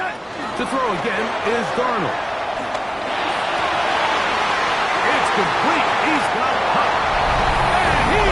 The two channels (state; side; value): identical; both; correlation 1.00